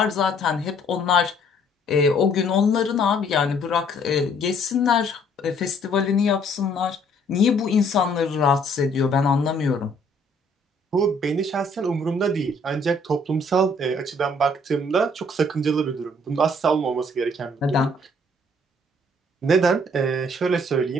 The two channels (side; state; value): both; normal; correlation 0.62